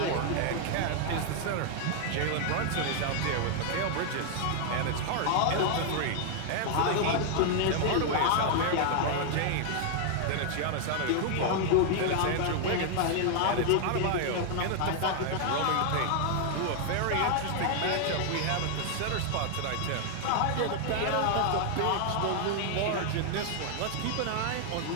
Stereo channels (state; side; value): different; both; correlation 0.00